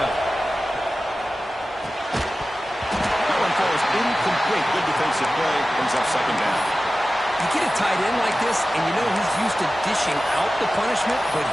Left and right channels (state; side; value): normal; both; correlation 0.95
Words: That one falls incomplete. Good defensive play. Brings up 2nd down. You get a tight end like this, and you know he's used to dishing out the punishment, but